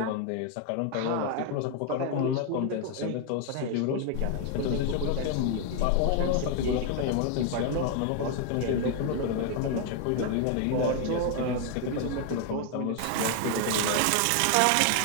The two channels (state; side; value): different; both; correlation 0.01